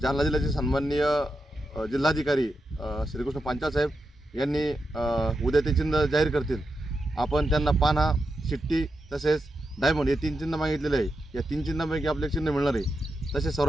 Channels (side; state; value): both; normal; correlation 0.87